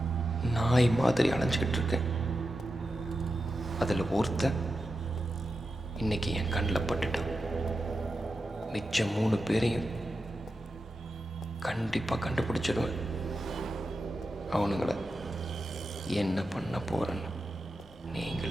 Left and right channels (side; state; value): both; normal; correlation 0.90